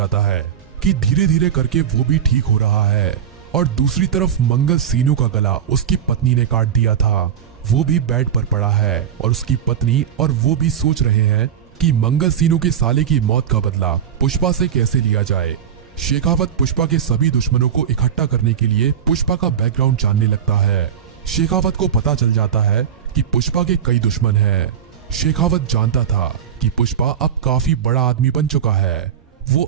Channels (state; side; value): quieter; left; 8.7 dB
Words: है कि धीरे धीरे करके वो भी ठीक हो रहा है। और दूसरी तरफ मंगल सीनू का गला उसकी पत्नी ने काट दिया था। वो भी बेड पर पड़ा है और उसकी पत्नी और वो भी सोच रहे हैं कि मंगल सीनू के साले की मौत का बदला पुष्पा से कैसे लिया जाए। शेखावत पुष्पा के सभी दुश्मनों को इकट्ठा करने के लिए पुष्पा का बैकग्राउंड जानने लगता है। शेखावत को पता चल जाता है कि पुष्पा के कई दुश्मन हैं। शेखावत जानता था कि पुष्पा अब काफी बड़ा आदमी बन चुका है। वो